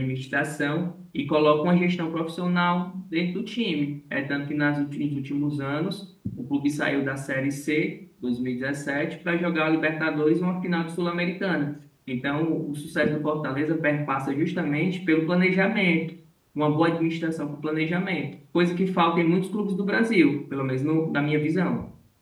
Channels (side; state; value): both; identical; correlation 1.00